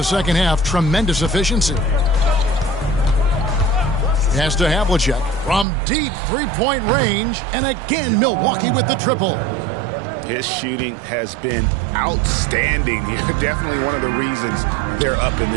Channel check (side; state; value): left; drops out; at 5.7 s